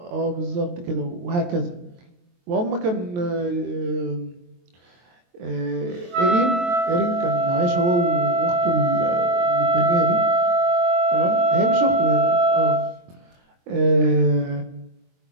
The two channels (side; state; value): left; late; 23 ms